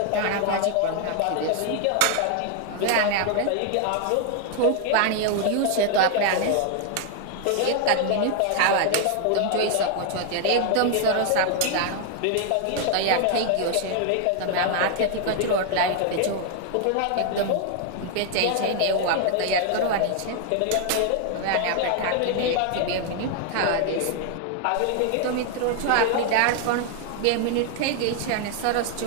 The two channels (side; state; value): both; different; correlation 0.00